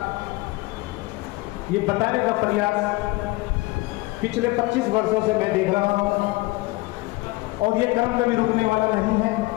ये बताने का प्रयास पिछले 25 वर्षों से मैं देख रहा हूं और ये क्रम कभी रुकने वाला नहीं है।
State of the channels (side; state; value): right; quieter; 21.3 dB